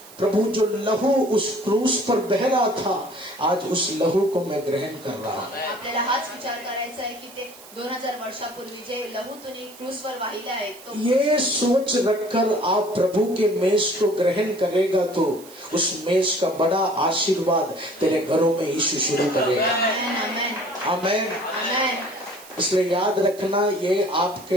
प्रभु जो लहू उस क्रूस पर बह रहा था, आज उस लहू को मैं ग्रहण कर रहा हूँ. आपल्याला हाच विचार करायचा आहे की ते 2000 वर्षापूर्वी जे लहू तुम्ही क्रूसवर वाहिला आहे तो ये सोच रखकर आप प्रभु के मेज को ग्रहण करेगा तो उस मेज का बड़ा आशीर्वाद तेरे घरों में यीशु शुरू करेगा. आमेन, आमेन, आमेन. आमेन. इसलिए याद रखना, ये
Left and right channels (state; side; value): noise; right; hiss, 20 dB below the sound